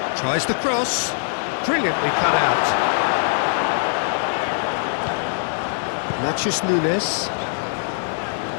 Tries the cross. Brilliantly cut out. Matches Nunes.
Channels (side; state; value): right; silent; digital silence